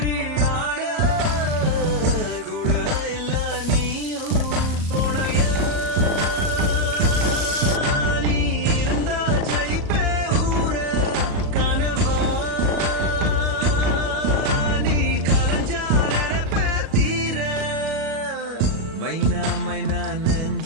ஆட கூட இல்ல நீயும் துணையா நீ இருந்தா ஜெயிப்பே ஊர கனவா நீ கலஞ்சா நினைப்பே தீர மைனா மைனா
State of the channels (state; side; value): late; left; 37 ms